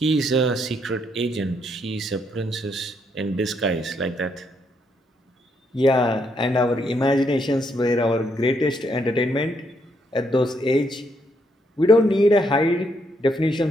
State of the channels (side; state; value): both; normal; correlation 0.75